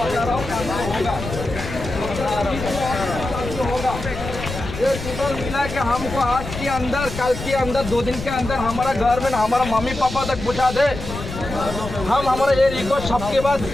ये टोटल मिला के हमको आज के अंदर, कल के अंदर, 2 दिन के अंदर हमारा घर में हमारा मम्मी पापा तक पहुँचा दे। हम हमारा ये रिक्वेस्ट सबके बाद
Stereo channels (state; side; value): noise; left; rumble, 9 dB below the sound